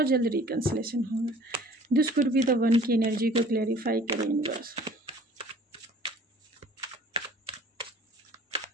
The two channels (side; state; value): both; normal; correlation 0.50